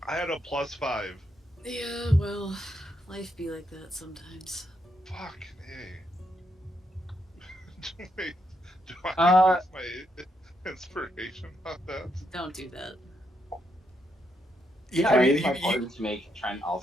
had a +5. Yeah, well, life be like that sometimes. Fuck, hey. Wait, do I Uh, use my inspiration on that? Don't do that. Yeah, Can I I mean, use my pardon to make Trent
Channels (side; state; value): both; normal; correlation 0.79